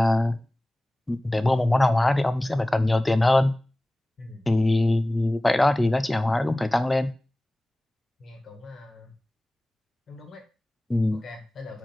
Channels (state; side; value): normal; both; correlation 0.98